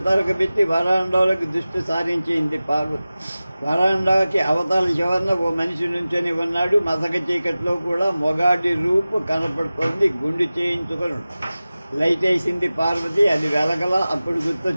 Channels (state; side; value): inverted; both; correlation -0.96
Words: పెట్టి వరాండాలోకి దృష్టి సారించింది పార్వతి. వరాండాకి అవతల చివరన ఓ మనిషి నుంచొని ఉన్నాడు. మసక చీకట్లో కూడా మొగాడి రూపు కనపడుతోంది. గుండు చేయించుకొని లైట్ వేసింది పార్వతి. అది వెలగల. అప్పుడు